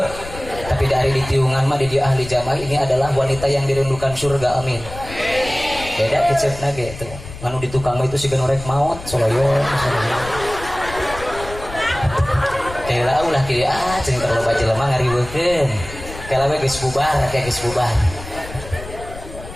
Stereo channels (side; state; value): left; noise; rumble, 13 dB below the sound